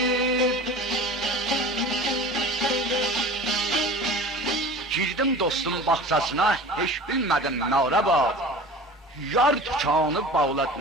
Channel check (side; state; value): both; normal; correlation 0.38